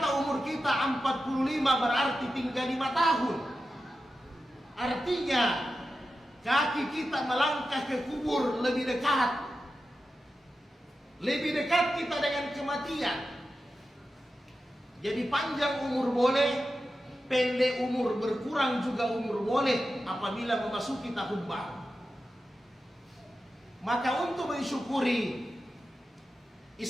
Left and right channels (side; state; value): both; normal; correlation 0.91